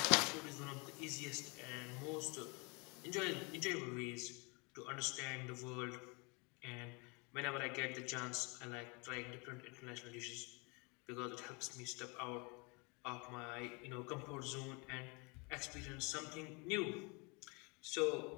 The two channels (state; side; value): quieter; right; 30.4 dB